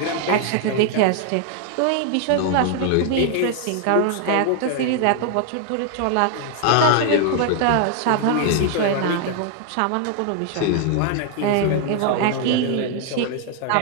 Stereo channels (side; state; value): both; different; correlation 0.00